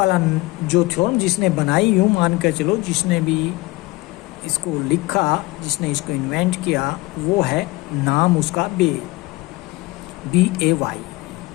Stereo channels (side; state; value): right; quieter; 21.7 dB